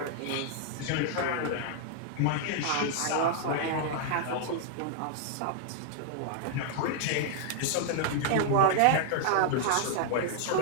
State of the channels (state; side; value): different; both; correlation -0.01